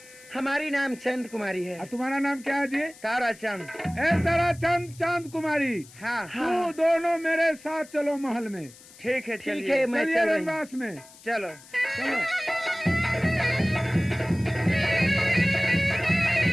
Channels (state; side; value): noise; left; hiss, 22 dB below the sound